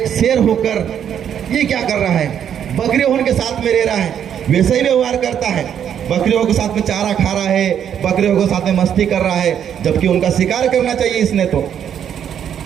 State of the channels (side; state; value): left; quieter; 9.0 dB